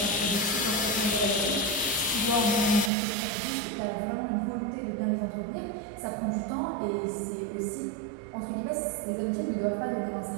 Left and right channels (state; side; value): drops out; left; at 2.9 s